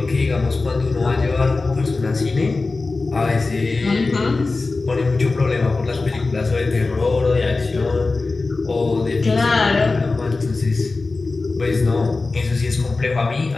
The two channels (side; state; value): right; quieter; 3.7 dB